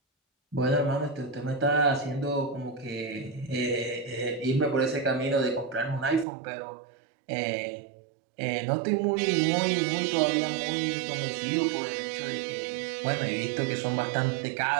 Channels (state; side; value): drops out; left; at 6.2 s